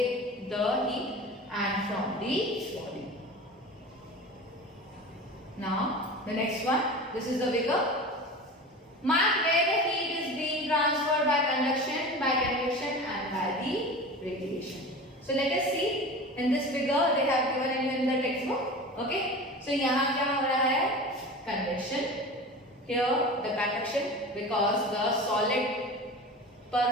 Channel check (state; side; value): normal; both; correlation 0.33